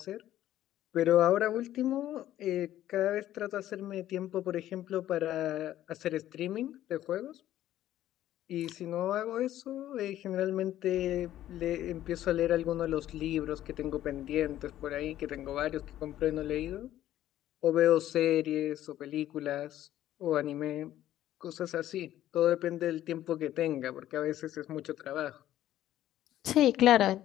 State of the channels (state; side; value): quieter; right; 12.9 dB